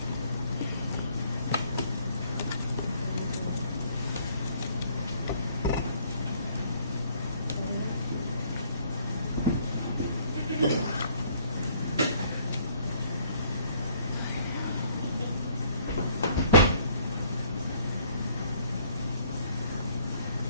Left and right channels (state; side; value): inverted; both; correlation -0.62